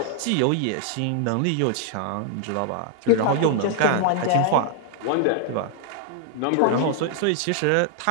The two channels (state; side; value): different; both; correlation 0.00